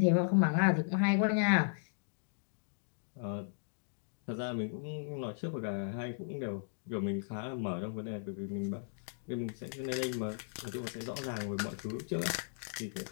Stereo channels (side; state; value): right; silent; digital silence